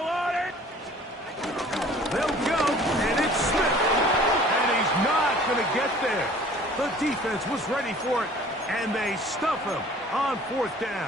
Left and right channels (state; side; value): normal; both; correlation 0.50